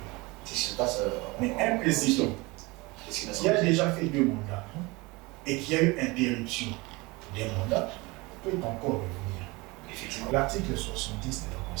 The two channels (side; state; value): left; quieter; 24.2 dB